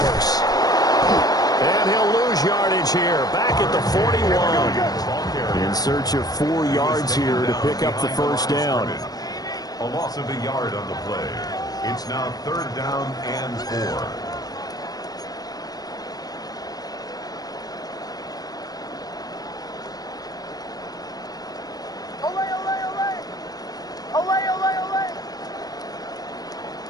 And he'll lose yardage here, back at the 41. In search of 4 yards here to pick up the first down. A loss of a yard on the play. It's now 3rd down and 4.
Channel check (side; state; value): right; late; 0.19 ms